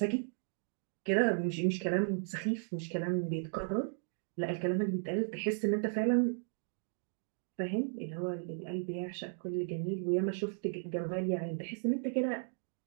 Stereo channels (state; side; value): silent; left; digital silence